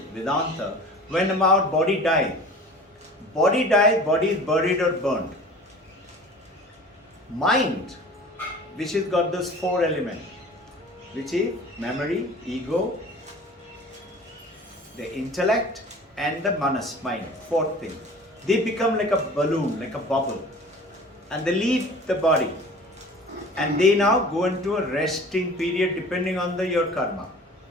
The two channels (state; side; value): normal; both; correlation 0.42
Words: Vedanta, when our body dies, body is buried or burned. Mind, which has got those four elements, which is memory, ego, the intellect, and the manas, mind, fourth thing. They become like a balloon, like a bubble, and they leave the body. And they now go into a resting period depending on your karma.